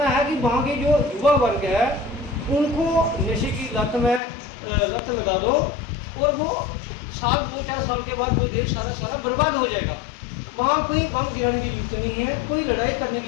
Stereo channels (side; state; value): right; drops out; at 4.2 s